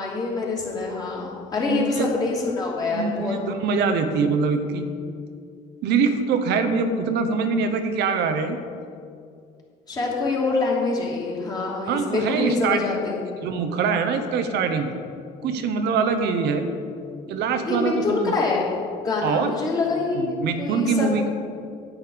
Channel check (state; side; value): normal; both; correlation 0.37